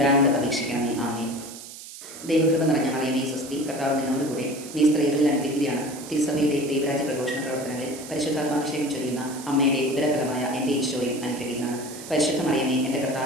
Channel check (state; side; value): noise; right; hiss, 14 dB below the sound